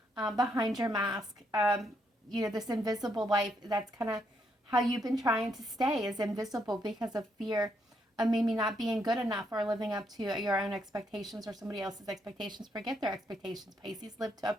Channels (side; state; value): both; normal; correlation 0.76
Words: behind your mask. This invisible life, that's kind of how you've been trying to stay, is invisible because of fear of maybe not being good enough or living up to your own expectations or somebody else's expectations. Forget their expectations, Pisces. Live up